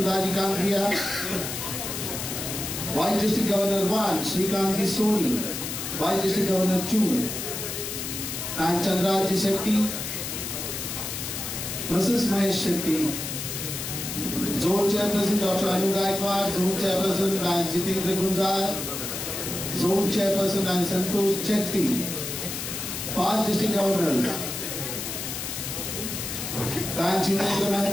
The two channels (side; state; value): left; noise; hiss, 5 dB below the sound